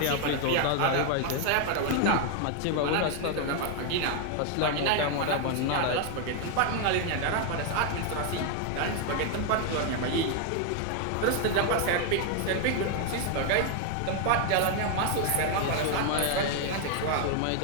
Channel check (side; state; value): both; different; correlation 0.01